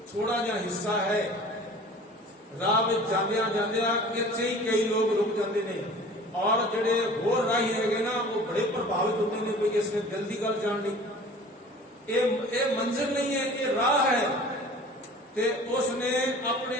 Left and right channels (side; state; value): both; normal; correlation 0.44